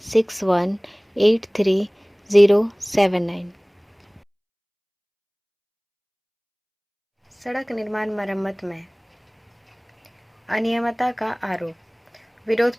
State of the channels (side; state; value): both; identical; correlation 1.00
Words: सड़क निर्माण मरम्मत में अनियमितता का आरोप, विरोध